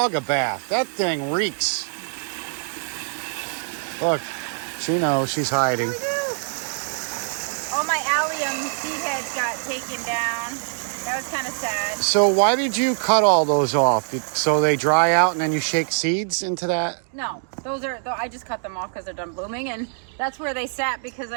a bath. That thing reeks. Look, she knows she's hiding. Oh, my allium seed heads got taken down. That was kind of sad. So why did you cut all those off? So they dry out and then you shake seeds into that? No, those are, I just cut them off because they're done blooming, and that's where they sat because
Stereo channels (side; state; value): left; silent; digital silence